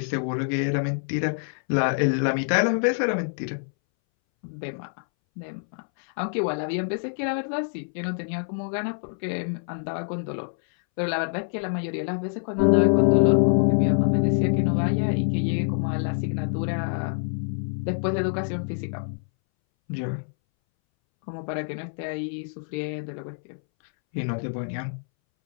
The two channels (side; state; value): right; silent; 61 dB below the other